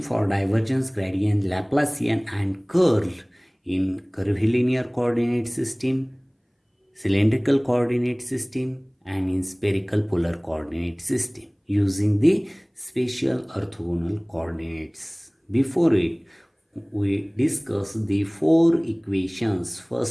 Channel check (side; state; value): both; identical; correlation 1.00